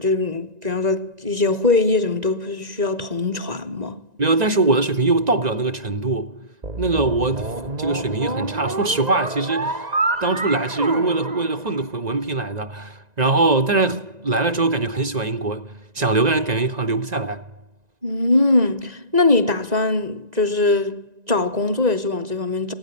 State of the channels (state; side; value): late; left; 1.9 ms